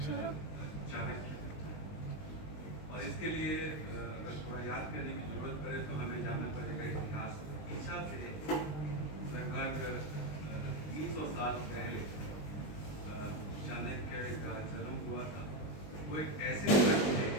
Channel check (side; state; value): right; late; 20 ms